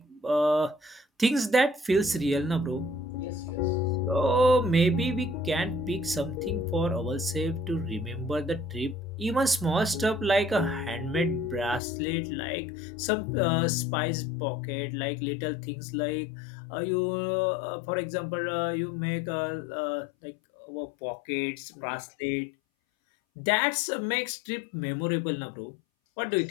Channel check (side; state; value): right; drops out; at 11.8 s